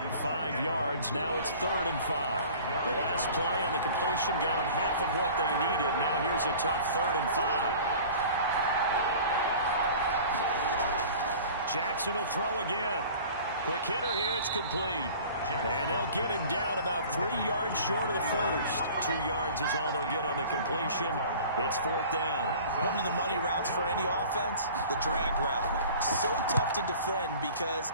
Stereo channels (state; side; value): inverted; both; correlation -0.44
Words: 5 yards. Now it's 3rd and 5. The last play on the completion got them half of what they needed. Now here's a tough 3rd and 5. Jackson will throw again. Quick hitter here. It's complete. And they'll get him down about 3 yards short of the first. 2 yards is all they'll get on the completion. It's 4th down. One of the money routes for any offense, the drag route. So tough to defend because